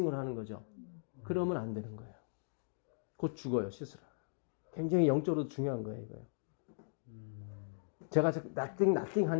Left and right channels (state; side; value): silent; right; digital silence